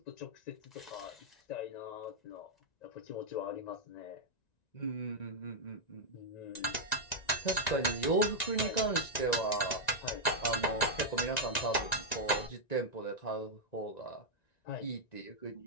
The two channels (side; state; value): right; late; 1.9 ms